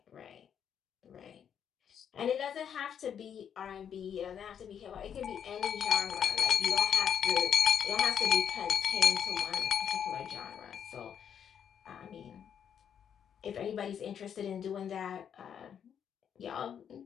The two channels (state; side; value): quieter; right; 8.3 dB